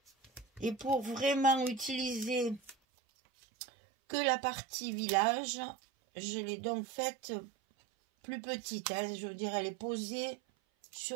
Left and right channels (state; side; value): drops out; left; at 2.8 s